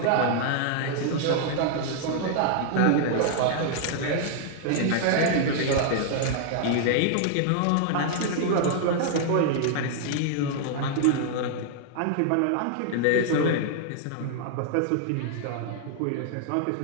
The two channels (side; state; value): both; different; correlation -0.01